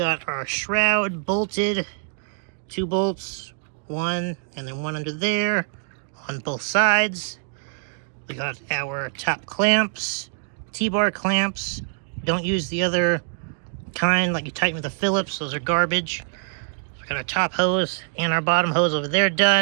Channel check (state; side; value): silent; left; 62 dB below the other